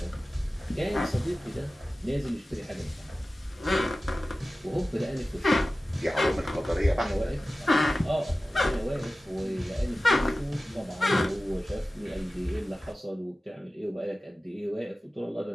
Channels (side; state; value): both; normal; correlation 0.96